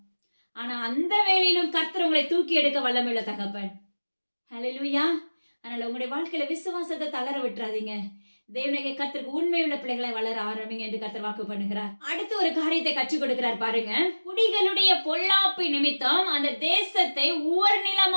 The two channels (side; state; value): both; inverted; correlation -1.00